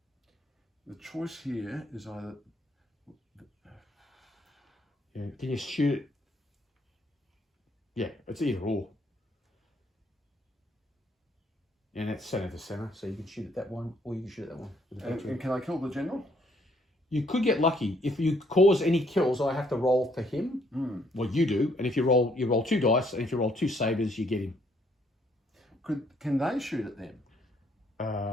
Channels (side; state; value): both; normal; correlation 0.67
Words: the choice here is either. Yeah. Can you shoot it? Yeah, it's either or. And it's center to center, so you can shoot at that one, or you can shoot at that one. With the battery. And can I kill the general? You could get lucky if you cause any kills. I have to roll for him. Well, you do, and if you roll 2 dice, and if you roll 2 sabers, you get him. Can they shoot at them?